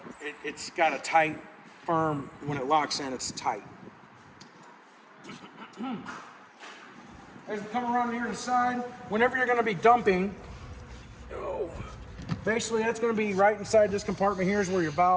it's got a tight, firm, when it locks in, it's tight. As we come around here to the side, whenever you're gonna be dumping, basically that's gonna be right inside this compartment here is where your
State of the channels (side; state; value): both; identical; correlation 1.00